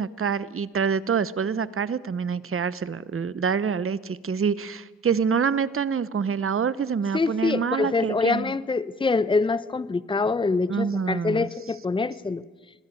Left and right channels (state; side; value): normal; both; correlation 0.48